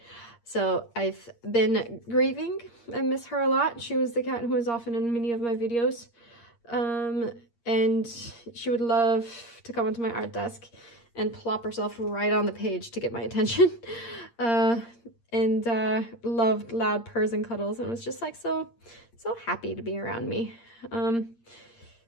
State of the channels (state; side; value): late; right; 8.6 ms